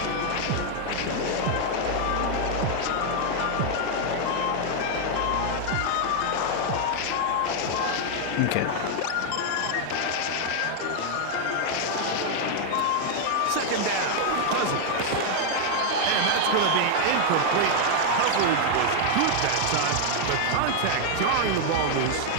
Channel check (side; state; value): both; different; correlation 0.00